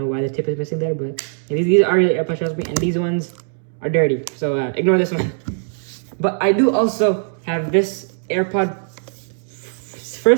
why the tip is missing there, but these are real AirPods, trust me, and these ones are dirty. So ignore this one. But I do also have this AirPod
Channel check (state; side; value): silent; left; 66 dB below the other